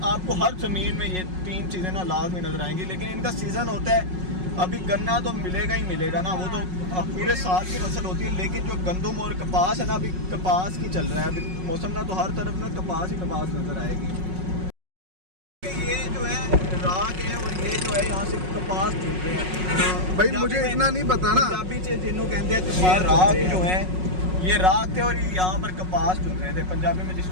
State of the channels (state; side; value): late; left; 5.4 ms